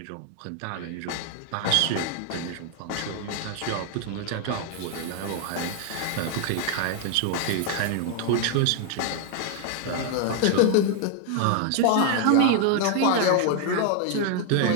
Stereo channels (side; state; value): both; different; correlation 0.00